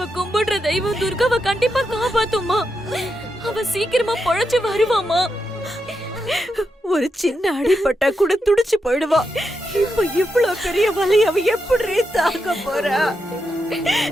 கும்பிடுற தெய்வம் துர்காவை கண்டிப்பா காப்பாத்துமா. அவ சீக்கிரமா பொழைச்சு வருவாமா. ஒரு சின்ன அடிபட்டா கூட துடிச்சு போயிடுவா. இப்ப இவ்வளவு பெரிய வலி அவ எப்படி தாங்க போறா?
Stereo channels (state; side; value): normal; both; correlation 0.85